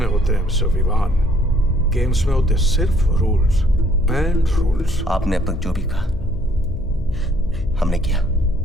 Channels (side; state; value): left; noise; hum, 11 dB below the sound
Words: होते हैं मिस्टर विवान, गेम्स में होते सिर्फ रूल्स एंड रूल्स। आपने अब तक जो भी कहा हमने किया,